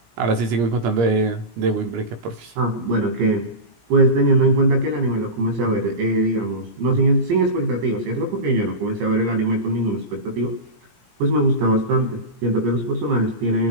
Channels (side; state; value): left; late; 17 ms